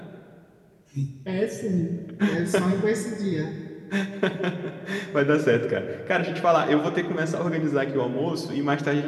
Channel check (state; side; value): identical; both; correlation 1.00